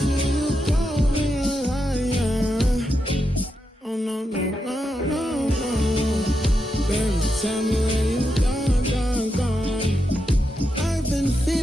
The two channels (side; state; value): both; normal; correlation 0.85